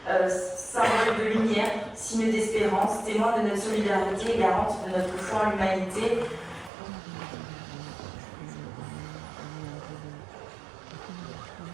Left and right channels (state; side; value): drops out; left; at 6.7 s